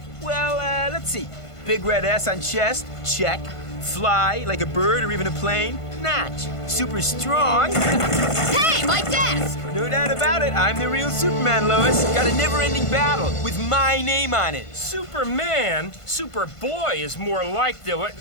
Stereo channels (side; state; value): right; late; 1.5 ms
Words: Well, let's see. Big red S on chest, check. Fly like a bird or even a plane, notch. Super strong. Hey, my desk! No doubt about it, I'm the real Superman, Lois. Got a never-ending battle with my name on it. Superman? Superboy is more like the...